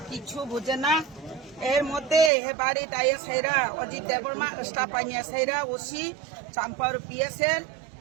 কিছু বুঝে না। এর মধ্যে বাড়ির আইএসআইরা অজিত দেববর্মা স্টাফ আইএসআইরা ওসি চাম্পার পিএসের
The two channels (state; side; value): drops out; left; at 2.3 s